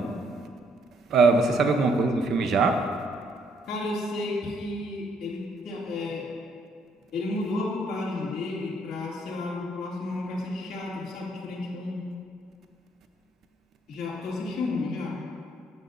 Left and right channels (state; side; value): normal; both; correlation 0.69